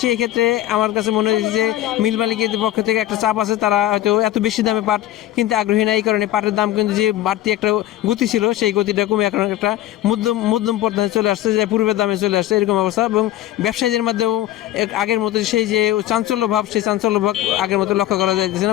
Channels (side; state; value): right; quieter; 13.9 dB